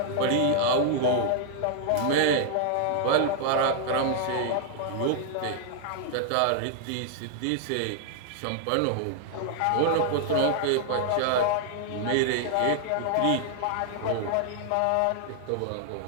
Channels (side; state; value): both; different; correlation -0.01